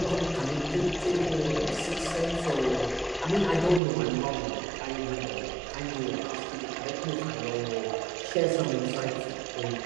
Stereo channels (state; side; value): drops out; left; at 3.8 s